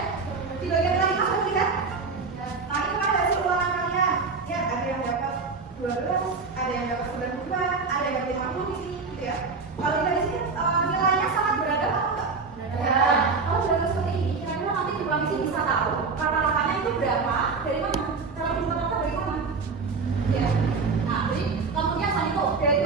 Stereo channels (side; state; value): left; quieter; 4.6 dB